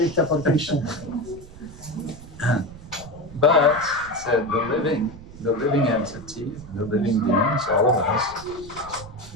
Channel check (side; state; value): right; noise; rumble, 17 dB below the sound